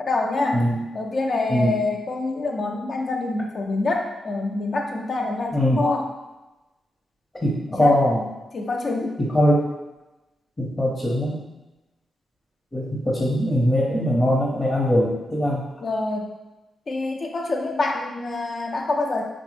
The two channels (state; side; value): normal; both; correlation 0.86